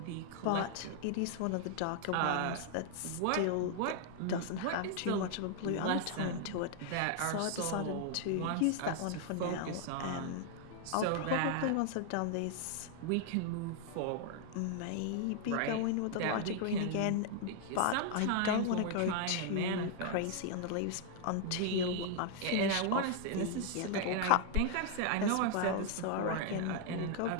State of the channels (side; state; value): both; different; correlation 0.00